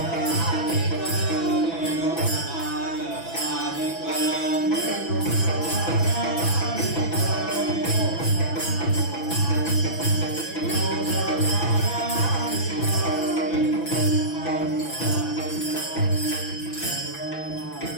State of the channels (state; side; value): late; right; 6.0 ms